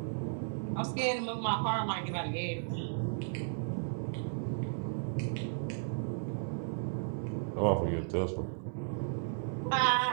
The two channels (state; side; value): silent; left; digital silence